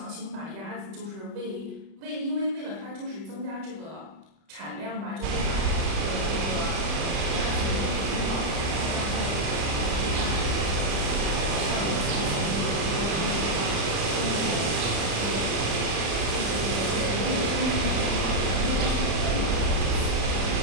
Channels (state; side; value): late; left; 31 ms